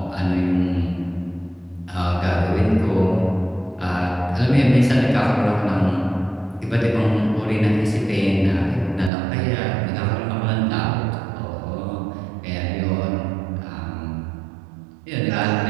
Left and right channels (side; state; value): left; drops out; at 9.1 s